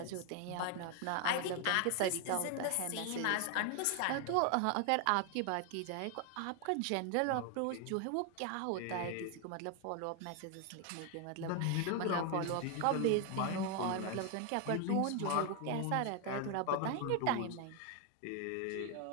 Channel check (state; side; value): different; both; correlation 0.01